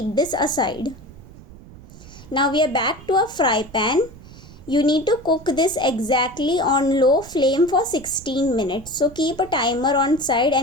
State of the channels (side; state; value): right; noise; rumble, 19 dB below the sound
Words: this aside. Now we are back to a fry pan. You need to cook this exactly on low flame for 16 minutes. So keep a timer on side